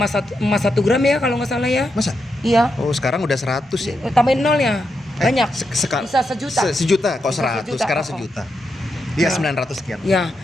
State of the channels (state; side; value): normal; both; correlation 0.85